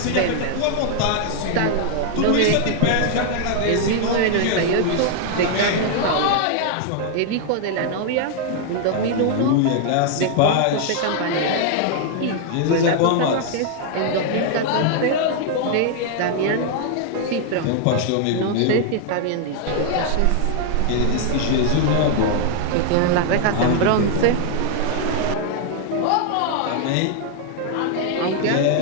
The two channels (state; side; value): different; both; correlation 0.00